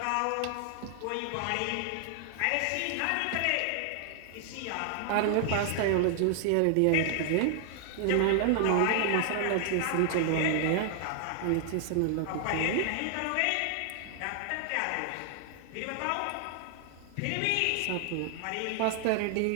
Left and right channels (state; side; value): different; both; correlation 0.00